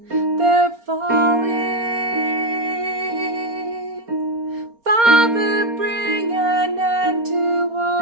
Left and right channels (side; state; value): left; late; 4.3 ms